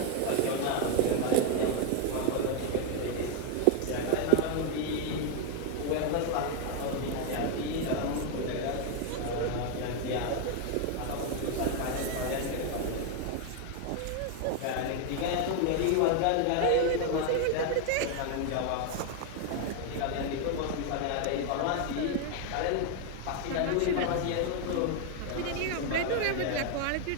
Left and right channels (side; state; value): both; different; correlation 0.01